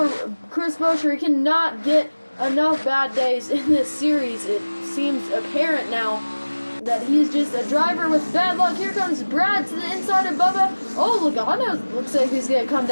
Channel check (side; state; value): both; inverted; correlation -1.00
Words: Chris Buescher. He cannot get enough bad days in this series. It seems apparent now that he's just a driver with bad luck. Here comes Brad to the inside of Bubba. Oh, Logano looks like he's going to come